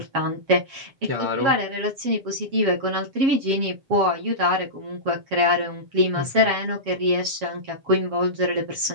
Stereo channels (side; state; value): left; late; 7.3 ms